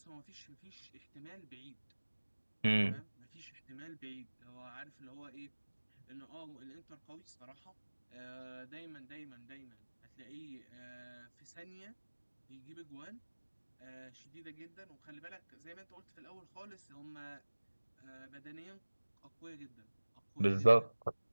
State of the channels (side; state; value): both; inverted; correlation -1.00